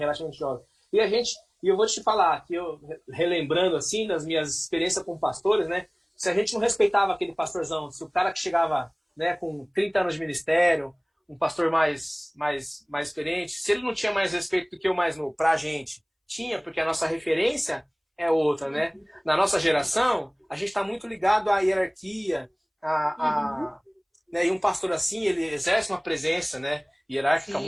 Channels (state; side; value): identical; both; correlation 1.00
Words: jovem. E eu vou te falar, que eu, relembrando assim, das minhas experiências com pastores, né? Se a gente não respeitava aquele pastorzão, se o cara que chegava, né, com 30 anos de ministério, um pastor mais experiente, se ele não tinha mais respeito do que o mais novo, pra gente, tinha, porque a nossa referência é outra, né? Na nossa geração, a gente está muito ligado à hierarquia, né? E um pastor assim, ele exerce uma presença, né, hierárquica